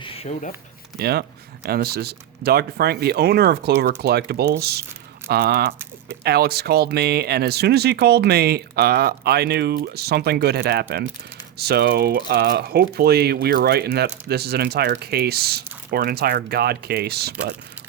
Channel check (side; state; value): left; quieter; 11.3 dB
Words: showed up. Yeah, and this is Dr. Frank, the owner of Clover Collectables. Alex called me, and as soon as he called me, I knew something good had happened. So hopefully we are right in that this is an entire case, or an entire God case, but